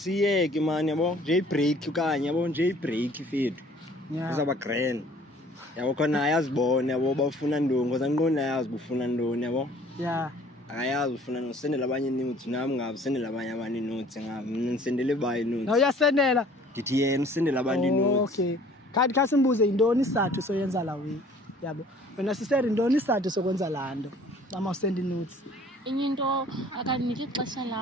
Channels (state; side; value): normal; both; correlation 0.53